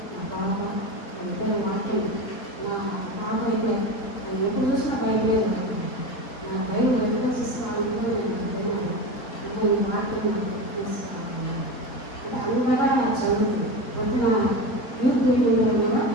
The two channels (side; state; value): right; late; 4.4 ms